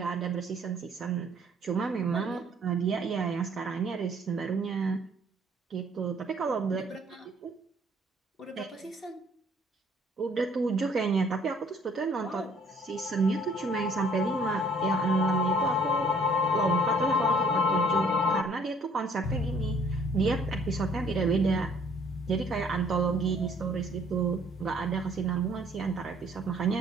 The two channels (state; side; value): normal; both; correlation 0.59